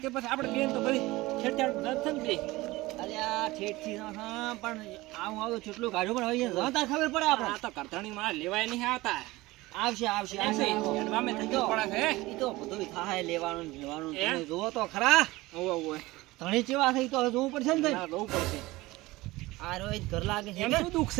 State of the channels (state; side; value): quieter; left; 19.8 dB